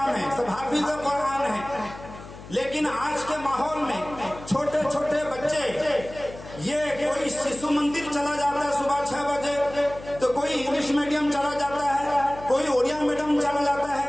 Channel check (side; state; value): left; noise; hum, 16 dB below the sound